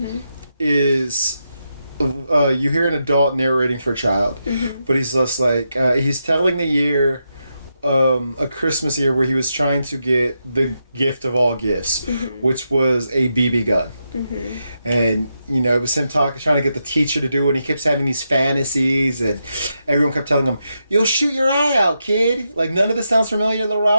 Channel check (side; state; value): both; inverted; correlation -0.85